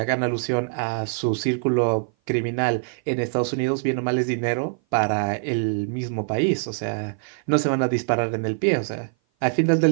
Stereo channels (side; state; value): left; silent; 57 dB below the other